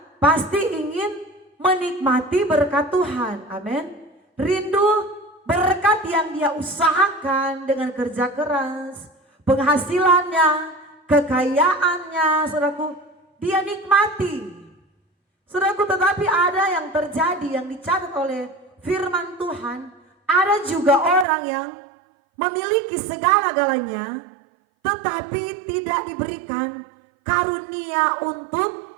pasti ingin menikmati berkat Tuhan. Amin. Rindu berkat yang dia usahakan dengan kerja keras, penghasilannya, kekayaannya, saudaraku, dia nikmati. Saudaraku, tetapi ada yang terjadi, yang dicatat oleh firman Tuhan, ada juga orang yang memiliki segala-galanya, tetapi tidak diberikan karunia untuk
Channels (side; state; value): left; drops out; at 21.2 s